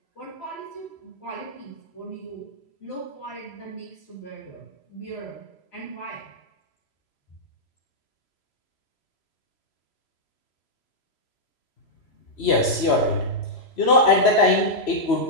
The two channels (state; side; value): late; right; 3.0 ms